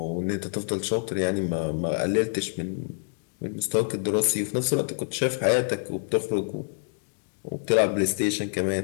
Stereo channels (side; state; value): right; silent; 60 dB below the other